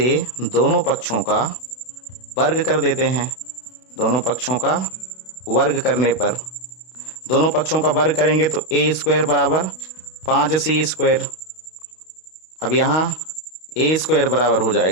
दोनों पक्षों का वर्ग कर देते हैं। दोनों पक्षों का वर्ग करने पर, दोनों पक्षों का वर्ग करेंगे तो A स्क्वायर बराबर 5C स्क्वायर। अब यहाँ A स्क्वायर बराबर हो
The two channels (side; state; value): right; late; 32 ms